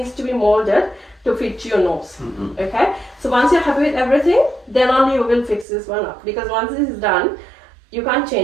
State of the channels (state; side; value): drops out; left; at 5.7 s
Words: to be molded to fit your nose. Okay? So once you're happy with everything, then only you will fix this one up, because once this is done, you can't